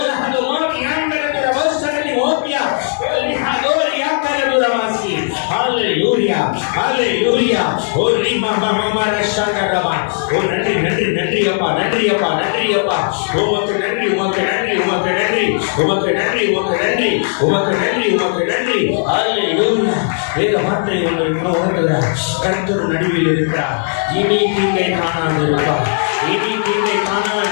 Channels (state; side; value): silent; right; digital silence